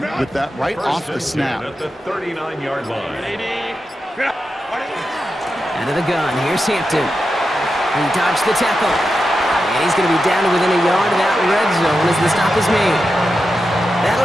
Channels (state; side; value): normal; both; correlation 0.89